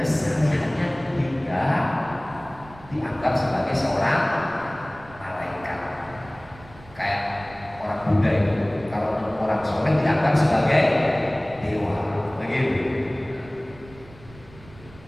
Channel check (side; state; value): right; noise; rumble, 21 dB below the sound